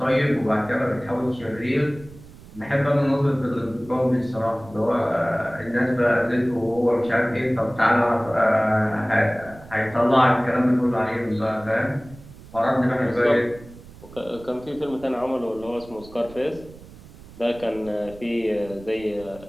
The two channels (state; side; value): noise; right; rumble, 20 dB below the sound